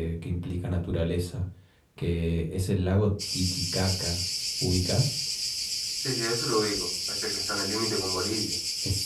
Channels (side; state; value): both; identical; correlation 1.00